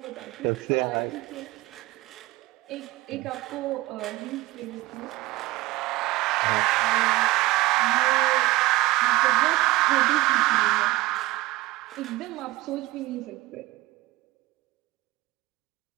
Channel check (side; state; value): left; quieter; 19.9 dB